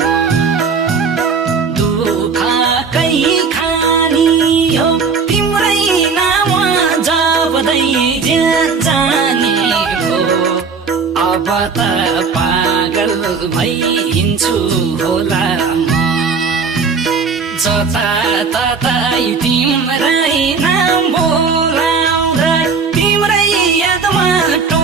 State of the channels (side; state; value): left; quieter; 5.2 dB